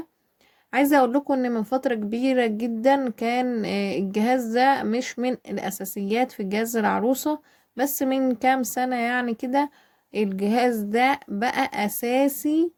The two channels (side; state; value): both; identical; correlation 1.00